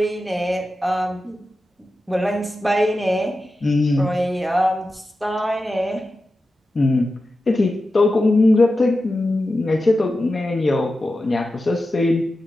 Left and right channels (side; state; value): both; normal; correlation 0.92